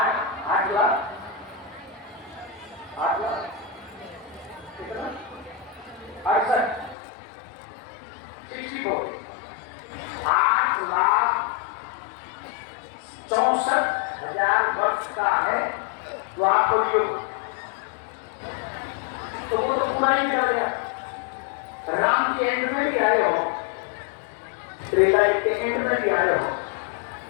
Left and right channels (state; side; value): drops out; right; at 7.0 s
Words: कितना 8,64,000 वर्ष का है द्वापर युग। तो वो तो पूरा ही निकल गया। राम के एंड में भी आए हो, त्रेता युग के एंड में भी आए हो,